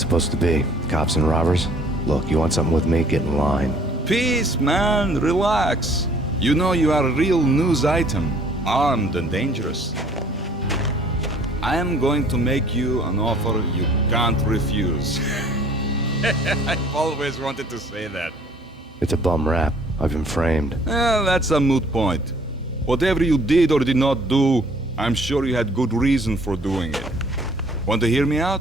supposed to be? Cops and robbers? Look, you want something with me? Get in line. Peace, man. Relax. You know you are a real news item. Armed and dangerous. I am going to make you an offer you can't refuse. I've always wanted to say that. It's a bum rap. I've been framed. That's a moot point. Whatever you did or did not do, I'm sure you had good reason for doing it. Want to hear me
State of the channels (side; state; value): both; normal; correlation 0.56